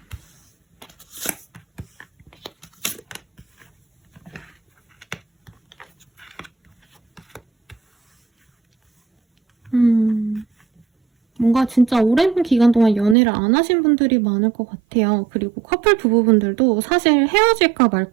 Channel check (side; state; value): left; drops out; at 13.2 s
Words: 뭔가 진짜 오랜 기간 동안 연애를 안 하신 분들이 많을 것 같아요. 그리고 커플 부부분들도 사실 헤어질까